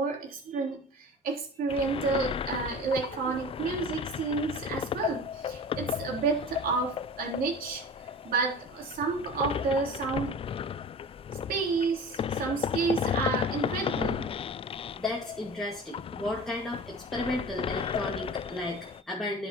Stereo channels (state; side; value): normal; both; correlation 0.36